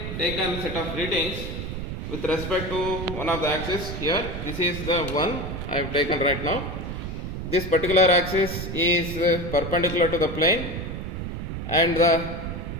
taken set of readings with respect to one of the axis here. This is the one I have taken right now. This particular axis is perpendicular to the plane, and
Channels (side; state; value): right; noise; rumble, 6 dB below the sound